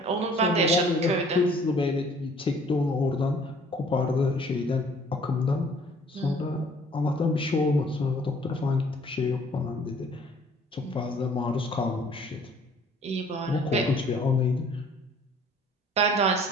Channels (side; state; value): both; normal; correlation 0.55